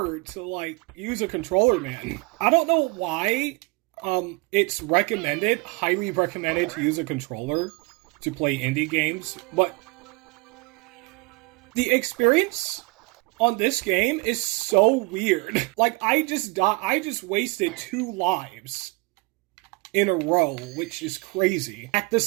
to, like, use a controller, man. I don't know why, it's recommended, highly recommended to use a controller to play indie games, but the experience on this game is so weird. Like, I just wasted 2 lives in a row, which is crazy, at the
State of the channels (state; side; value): quieter; left; 26.2 dB